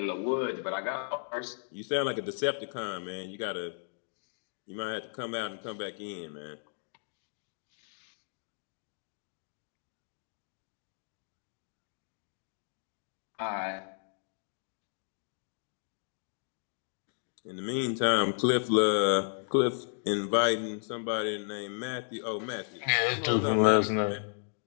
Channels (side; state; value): right; silent; digital silence